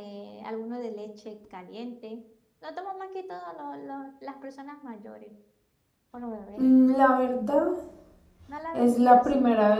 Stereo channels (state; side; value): identical; both; correlation 1.00